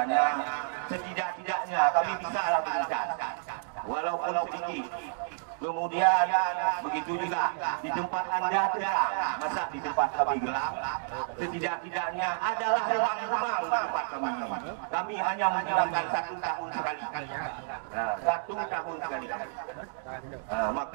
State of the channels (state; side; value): silent; left; digital silence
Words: setidak-tidaknya kami bisa lakukan walaupun sedikit. Kemudian begitu juga di tempat Anda terang, masa di tempat kami gelap, setidak-tidaknya adalah ruang-ruang di tempat kami. Kami hanya menggunakan 1 tahun sekali. 1 tahun sekali.